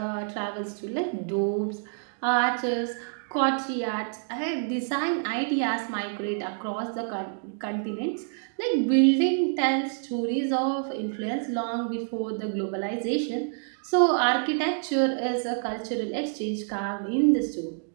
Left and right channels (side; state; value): left; silent; digital silence